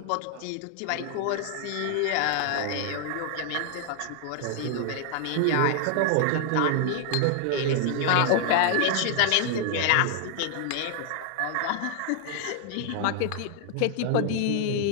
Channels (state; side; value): different; both; correlation 0.00